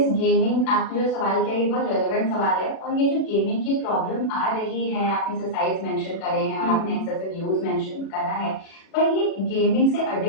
गेमिंग, आपने जो सवाल किया ये बहुत रेलेवेंट सवाल है। और ये जो गेमिंग की प्रॉब्लम आ रही है, आपने एक्सरसाइज मेंशन करे हैं और आपने एक्सेसिव यूज मेंशन करा है, पर ये गेमिंग से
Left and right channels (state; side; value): late; right; 36 ms